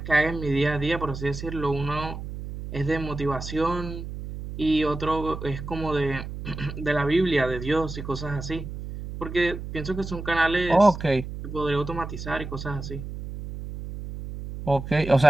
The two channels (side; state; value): right; noise; hum, 9 dB below the sound